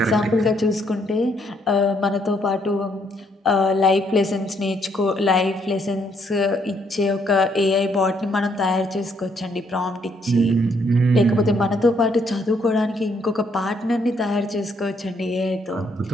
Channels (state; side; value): normal; both; correlation 0.71